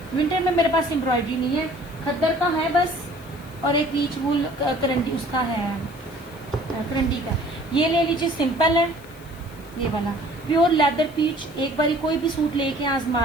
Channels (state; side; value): noise; left; hiss, 24 dB below the sound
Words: विंटर में मेरे पास एम्ब्रॉयडरी नहीं है, खद्दर का है बस, और एक पीच वूल करंडी उसका है, करंडी का। ये ले लीजिए, सिंपल है ये वाला प्योर लेदर पीच। एक बारी कोई भी सूट लेके